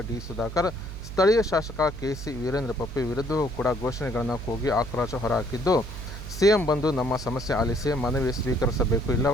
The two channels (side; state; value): right; noise; hum, 10 dB below the sound